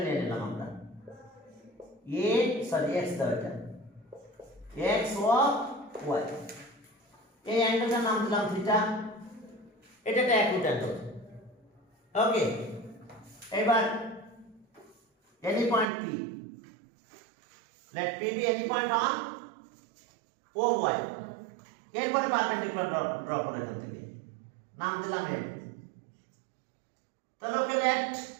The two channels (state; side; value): drops out; left; at 15.9 s